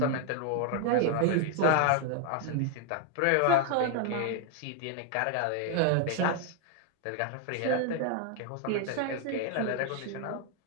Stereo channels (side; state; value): both; different; correlation 0.00